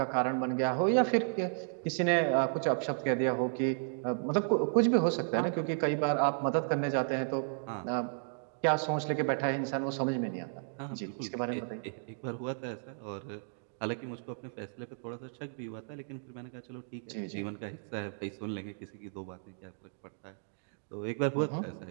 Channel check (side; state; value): left; silent; digital silence